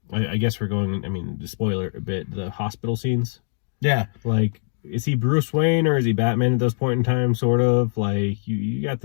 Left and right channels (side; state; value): right; silent; digital silence